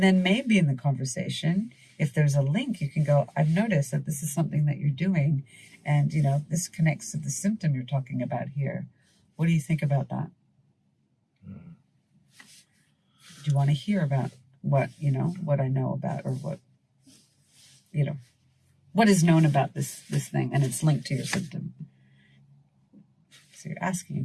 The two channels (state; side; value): identical; both; correlation 1.00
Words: then maybe in the conversation, if there's a link, you can go, I've noticed that this is something that you're doing, and, you know, this connects to the symptom you're talking about here. What do you think about that? Do you want to hear about what I know about, or what is known about this thing, and it's linked to your symptom? So you're asking